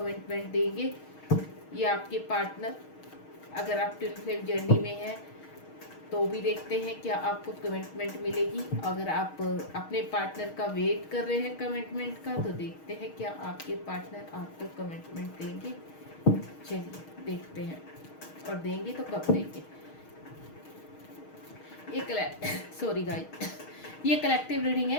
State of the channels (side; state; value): right; late; 6.4 ms